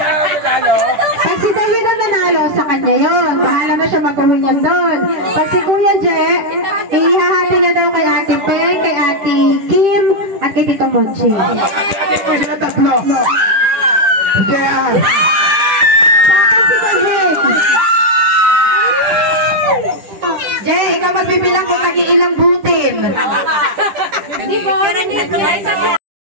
si David ang nanalo, sa kanya yun. Bahala na siya mag-uwi niyan doon. Pag si Kuya J, ihahati na daw kay Ate Peng, kay Ate Kim, at kay Tito Monching. Ate ko sila 3. Kaya... Si David. Jay, ikaw magbibilang kung nag-iilang butin. Hindi po,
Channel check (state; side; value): late; left; 10 ms